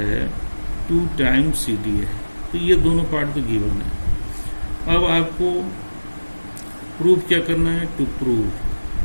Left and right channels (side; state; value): both; inverted; correlation -1.00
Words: 2 टाइम्स CD है। तो ये दोनों पार्ट तो गिवन है। अब आपको प्रूफ क्या करना है, टू प्रूव